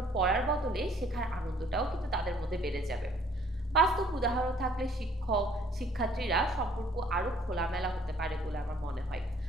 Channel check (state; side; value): normal; both; correlation 0.60